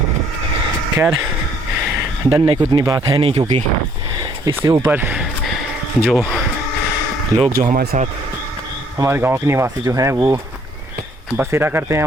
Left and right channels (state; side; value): normal; both; correlation 0.63